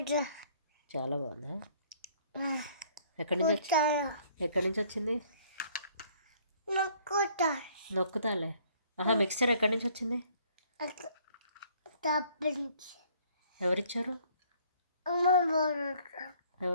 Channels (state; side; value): inverted; both; correlation -0.60